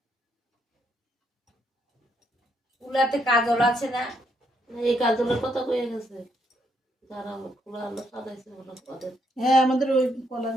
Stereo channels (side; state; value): both; normal; correlation 0.75